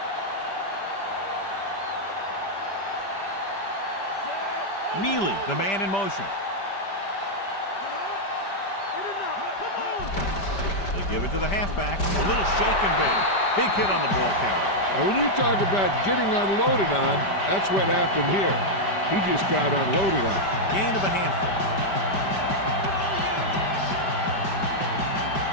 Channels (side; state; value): right; late; 5.1 ms